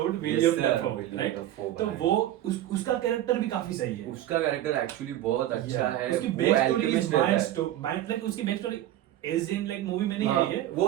William Dafoe, right? तो वो उसका कैरेक्टर भी काफी सही है, उसका कैरेक्टर एक्चुअली बहुत अच्छा है। उसकी back story is mind like उसकी back story as in like movie में नहीं आई है, वो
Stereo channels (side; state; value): left; quieter; 13.1 dB